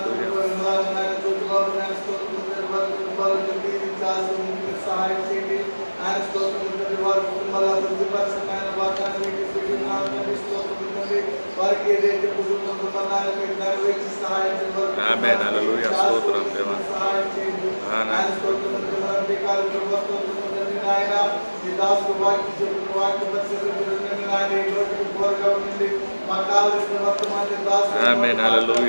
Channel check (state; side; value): inverted; both; correlation -1.00